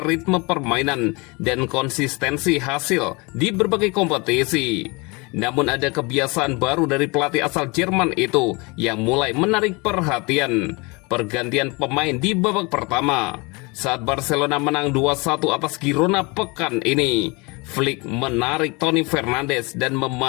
ritme permainan dan konsistensi hasil di berbagai kompetisi. Namun ada kebiasaan baru dari pelatih asal Jerman itu yang mulai menarik perhatian. Pergantian pemain di babak pertama. Saat Barcelona menang 2-1 atas Girona pekan ini, Flick menarik Toni Fernandes dan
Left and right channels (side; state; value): right; quieter; 27.5 dB